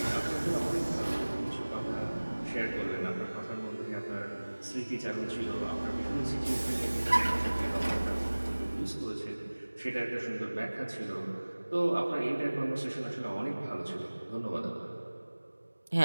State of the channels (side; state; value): both; inverted; correlation -1.00